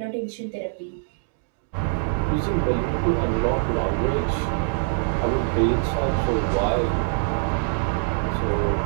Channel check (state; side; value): silent; left; 63 dB below the other